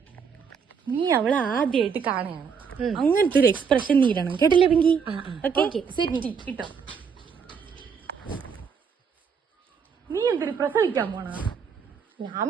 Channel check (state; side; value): quieter; left; 6.3 dB